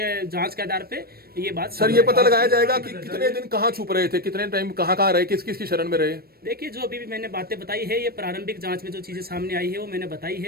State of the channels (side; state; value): left; late; 0.44 ms